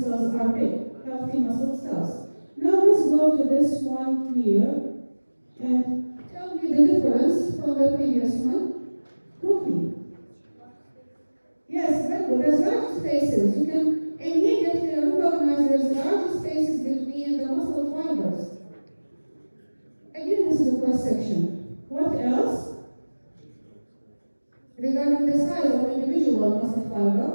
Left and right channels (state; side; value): inverted; both; correlation -1.00